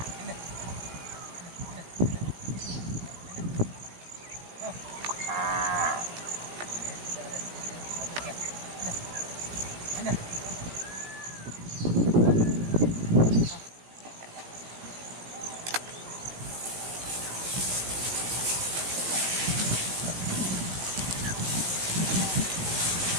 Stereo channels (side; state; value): left; late; 17 ms